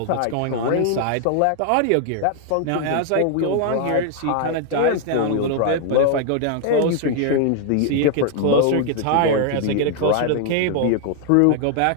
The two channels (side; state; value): both; different; correlation 0.00